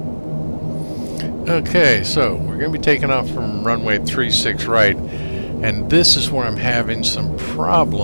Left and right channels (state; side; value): inverted; both; correlation -1.00